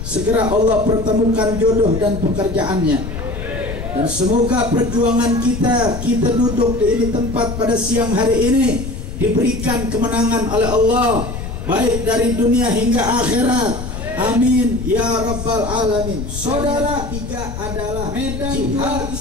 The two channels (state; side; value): noise; left; rumble, 7 dB below the sound